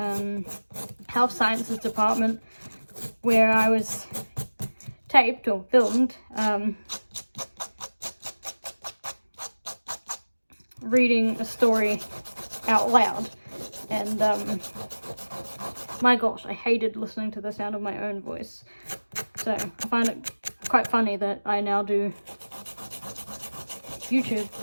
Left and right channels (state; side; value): inverted; both; correlation -1.00